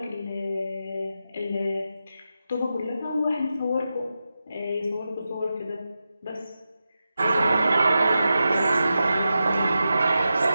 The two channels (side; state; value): both; inverted; correlation -0.90